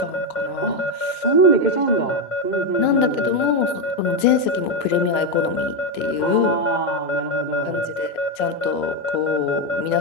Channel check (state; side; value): late; right; 2.1 ms